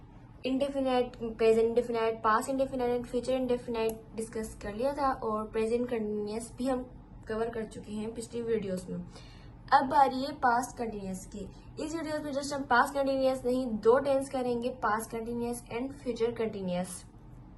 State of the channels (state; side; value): identical; both; correlation 1.00